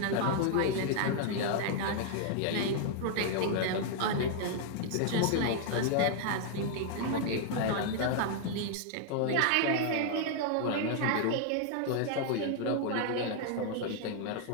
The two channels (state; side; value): different; both; correlation 0.00